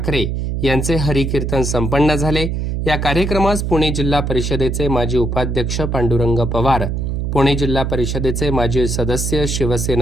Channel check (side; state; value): right; noise; hum, 1 dB below the sound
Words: यांचे हरिकीर्तन संपन्न झाले। या कार्यक्रमास पुणे जिल्हा परिषदेचे माजी उपाध्यक्ष पांडुरंग पवार, पुणे जिल्हा परिषदेचे माजी सदस्य